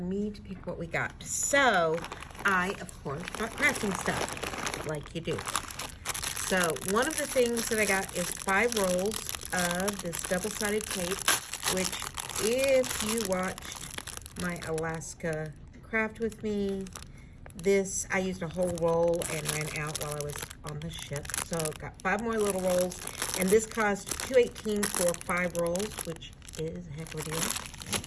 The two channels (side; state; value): both; identical; correlation 1.00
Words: to pick what we got. So I, of course, got crafting stuff, like you do. So one of the things that I got is 5 rolls of this double-sided tape, which if you watched my Alaska craft with me, I used a whole roll and ran out while I was on the ship. So got 5 more little rolls, and this cost $2.18 for 5 rolls, which is a heck of a deal.